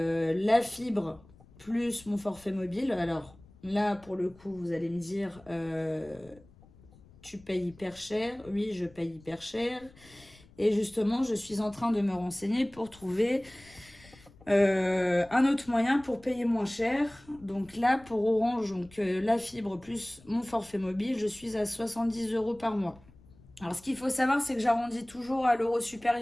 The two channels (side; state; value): left; noise; rumble, 25 dB below the sound